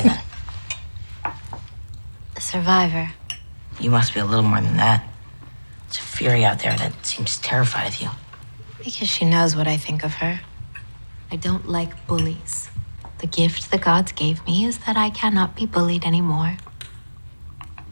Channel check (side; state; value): both; inverted; correlation -1.00